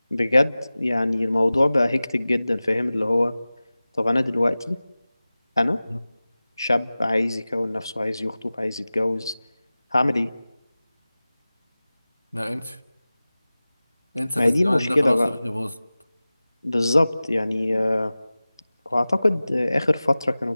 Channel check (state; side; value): inverted; both; correlation -0.97